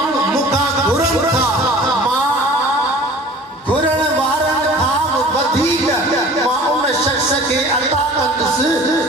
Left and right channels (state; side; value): normal; both; correlation 0.44